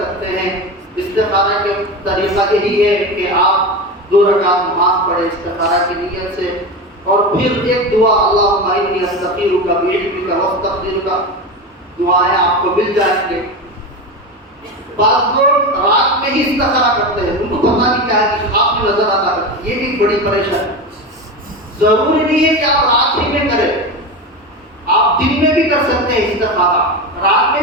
سکتے ہیں۔ استخارہ کے طریقہ یہی ہے کہ آپ 2 رکعت نماز پڑھیں استخارہ کی نیت سے، اور پھر ایک دعا اللہم انی استخیرک بعلمک واستقدرک، دعائیں آپ کو مل جائیں گے۔ بعض لوگ رات میں ہی استخارہ کرتے ہیں، ان کو پتہ نہیں کیا ہے کہ خواب میں نظر آتا ہے، یہ بھی بڑی پریشانی۔ ضروری نہیں ہے کہ آپ رات ہی میں کریں، آپ دن میں بھی کر سکتے ہیں استخارہ، رات میں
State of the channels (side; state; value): both; normal; correlation 0.22